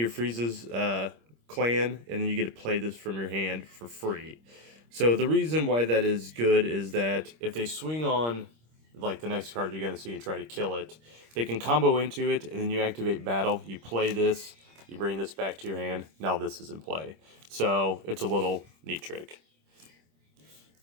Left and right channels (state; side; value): late; left; 26 ms